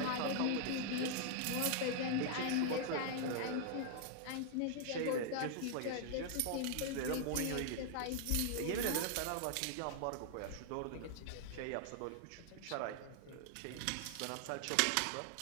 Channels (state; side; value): different; both; correlation 0.00